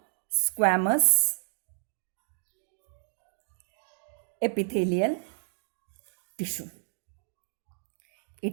squamous epithelial tissue.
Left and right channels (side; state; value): left; silent; digital silence